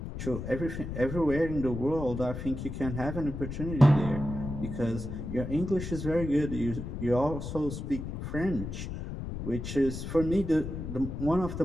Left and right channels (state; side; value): noise; left; rumble, 6 dB below the sound